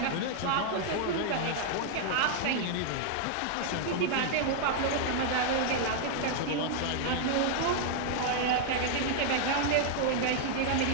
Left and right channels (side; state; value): both; different; correlation -0.01